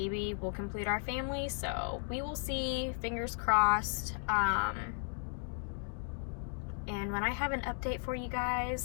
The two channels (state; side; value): silent; right; 54 dB below the other